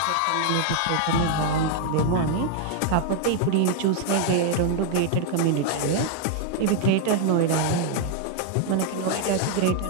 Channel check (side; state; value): both; different; correlation 0.00